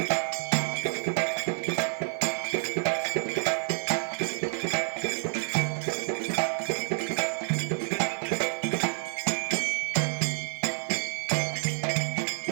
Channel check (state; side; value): silent; left; 59 dB below the other